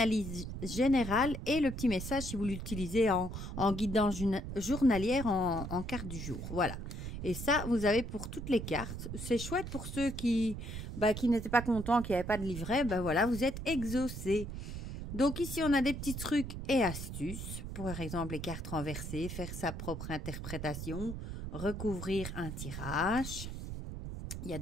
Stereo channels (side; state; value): right; noise; rumble, 7 dB below the sound